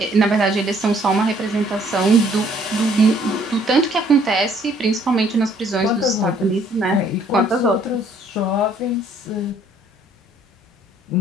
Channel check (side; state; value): both; normal; correlation 0.62